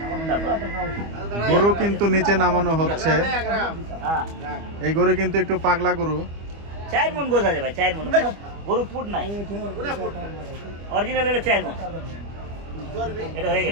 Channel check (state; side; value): late; left; 25 ms